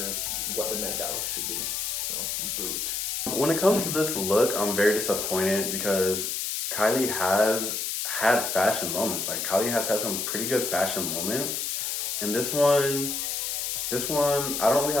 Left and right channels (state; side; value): noise; left; hiss, 2 dB below the sound